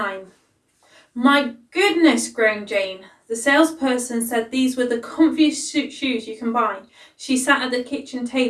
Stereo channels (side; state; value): both; identical; correlation 1.00